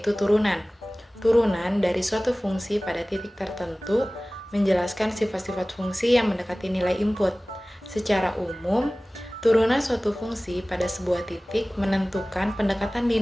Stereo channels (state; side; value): normal; both; correlation 0.98